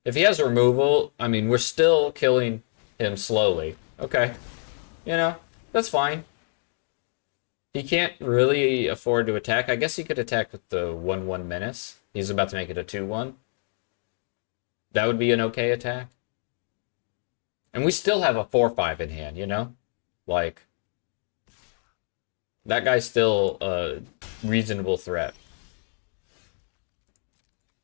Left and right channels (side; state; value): right; silent; 60 dB below the other